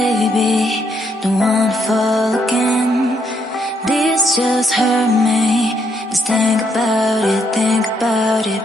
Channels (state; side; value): normal; both; correlation 0.74